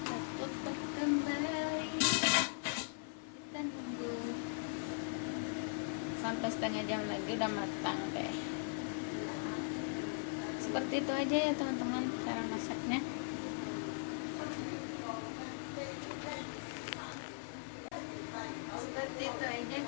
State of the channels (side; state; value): right; silent; 51 dB below the other